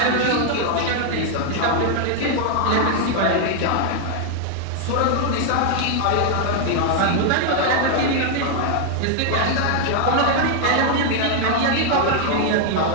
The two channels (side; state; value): both; different; correlation 0.00